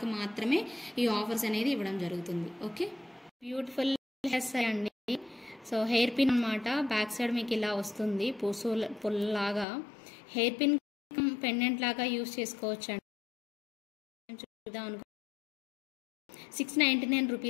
మాత్రమే ఈ ఆఫర్స్ అనేది ఇవ్వడం జరుగుతుంది. ఓకే, బ్యూటిఫుల్ హెయిర్స్ అండి. సో హెయిర్ పిన్ అనమాట. బ్యాక్ సైడ్ మీకు ఇలా వస్తుంది పుల్లాగా. హెయిర్ పిన్ పెండెంట్ లాగా యూజ్ చేసుకోవచ్చు అండి. చూద్దాం అనుకో 699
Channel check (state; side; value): drops out; right; at 9.7 s